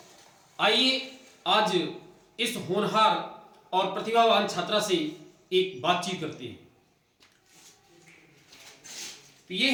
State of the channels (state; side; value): identical; both; correlation 1.00